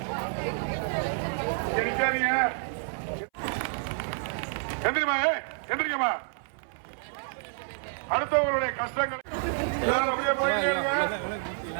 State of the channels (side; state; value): left; silent; 59 dB below the other